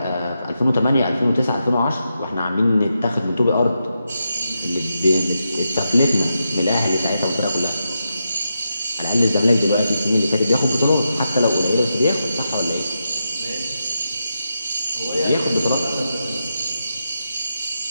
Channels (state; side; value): inverted; both; correlation -0.86